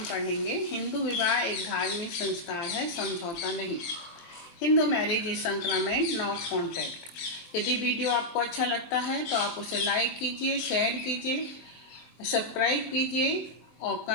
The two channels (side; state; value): right; late; 23 ms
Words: पढ़ेंगे हिंदू विवाह एक धार्मिक संस्कार है, समझौता नहीं। Hindu marriage is sacrament not contract. यदि वीडियो आपको अच्छा लगता है तो आप उसे लाइक कीजिए, शेयर कीजिए, सब्सक्राइब कीजिए और